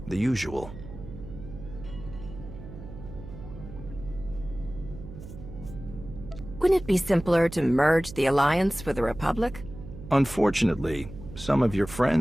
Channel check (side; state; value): right; noise; hum, 13 dB below the sound